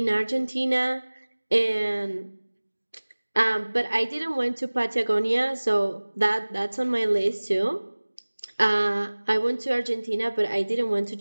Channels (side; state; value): both; inverted; correlation -1.00